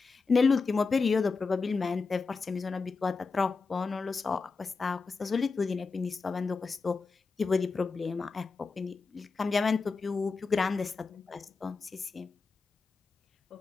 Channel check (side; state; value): right; quieter; 4.5 dB